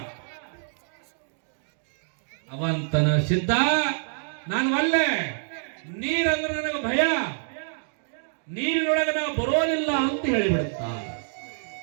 ಅವಂತನ ಸಿದ್ಧ, ನಾನು ಒಲ್ಲೆ, ನೀರಂದ್ರೆ ನನಗೆ ಭಯ, ನೀರಿನೊಳಗೆ ನಾವು ಬರೋದಿಲ್ಲ ಅಂತ ಹೇಳಿಬಿಡುತ್ತ.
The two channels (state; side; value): silent; left; digital silence